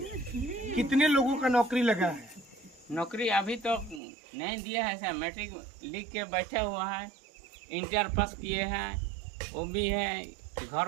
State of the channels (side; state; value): left; drops out; at 4.0 s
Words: कितने लोगों का नौकरी लगा है? नौकरी अभी तो नहीं दिया है सर। मैट्रिक लिख के बैठा हुआ है, इंटर पास किए हैं वो भी है घर